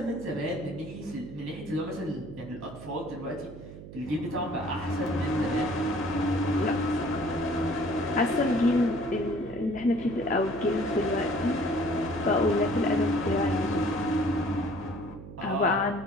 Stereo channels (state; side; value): noise; right; hum, 14 dB below the sound